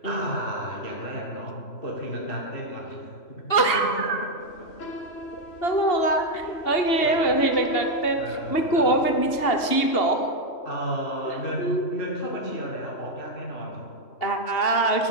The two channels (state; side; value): late; right; 2.8 ms